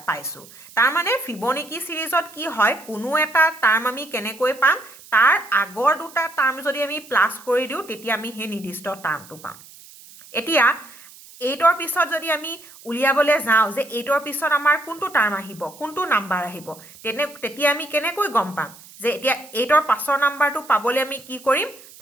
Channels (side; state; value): right; noise; hiss, 21 dB below the sound